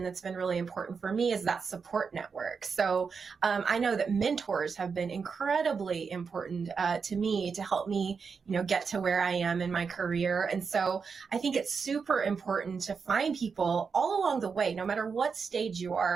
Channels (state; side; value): quieter; left; 5.5 dB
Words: that's been really important for me is that support network. So I know that mentors have been incredibly important to me to help me, get to where I am in my career. And so I think it's super important to find people all along the way, no matter what stage you